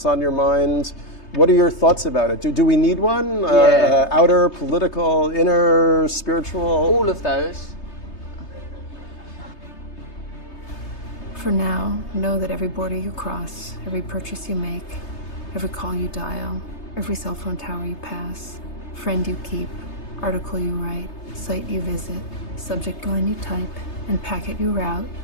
on your mind. What are your thoughts about it? Do we need one? Yeah. Outer, political, inner, spiritual? All of those. For now, know that every border you cross, every purchase you make, every call you dial, every cell phone tower you pass, friend you keep, article you write, site you visit, subject line you type, and packet you route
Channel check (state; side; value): late; right; 3.3 ms